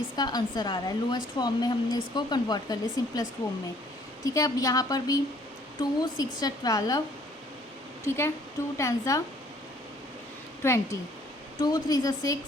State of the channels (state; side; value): normal; both; correlation 0.60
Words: आंसर आ रहा है। लोएस्ट फॉर्म में हमने इसको कन्वर्ट कर लिया सिंपलेस्ट फॉर्म में। ठीक है, अब यहाँ पर भी 2 6 12, ठीक है, 2 10 20, 2 3